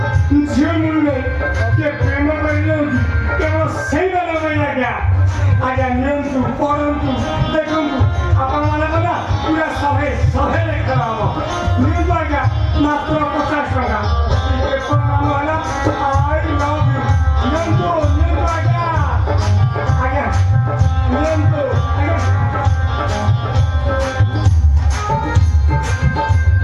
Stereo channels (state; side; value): identical; both; correlation 1.00